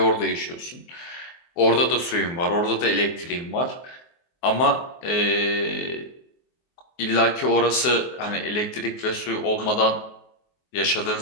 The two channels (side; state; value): right; late; 24 ms